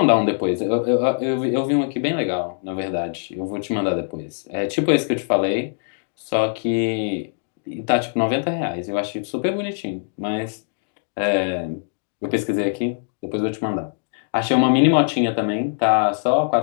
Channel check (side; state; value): right; silent; digital silence